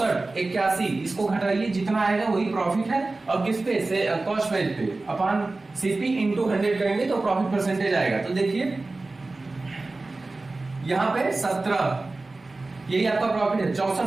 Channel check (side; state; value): left; quieter; 3.3 dB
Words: 81, इसको घटाइए, जितना आएगा वही प्रॉफिट है। और किस पे से? कॉस्ट प्राइस पे अपॉन सीपी इंटू 100 करेंगे तो प्रॉफिट परसेंटेज आएगा। तो देखिए, यहाँ पे 17, यही आपका प्रॉफिट है। 64